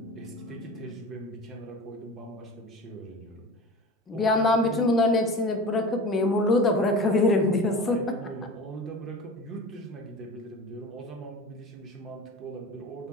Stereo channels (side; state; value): both; normal; correlation 0.34